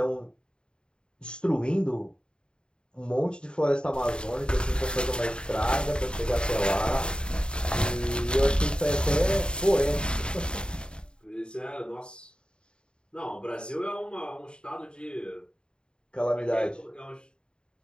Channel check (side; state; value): right; late; 0.051 ms